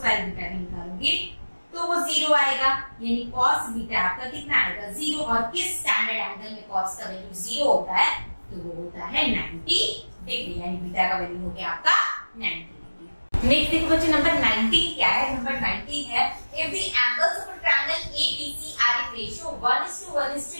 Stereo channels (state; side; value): inverted; both; correlation -1.00